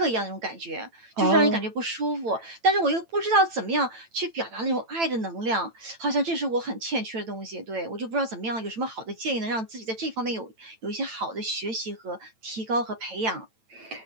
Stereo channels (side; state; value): left; late; 9.0 ms